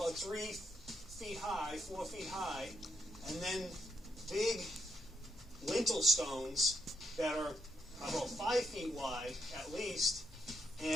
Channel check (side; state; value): both; normal; correlation 0.78